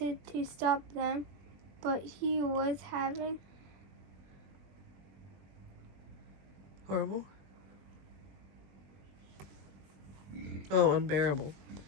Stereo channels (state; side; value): late; left; 20 ms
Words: to stop them, but he was having Horrible? Oh, unbearable.